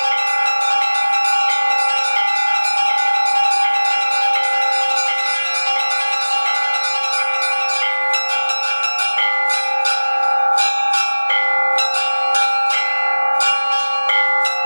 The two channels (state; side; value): inverted; both; correlation -1.00